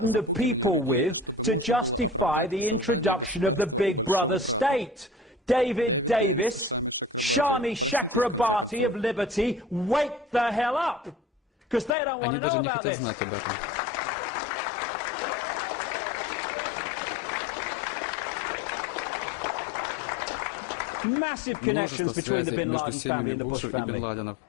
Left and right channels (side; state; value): right; drops out; at 11.9 s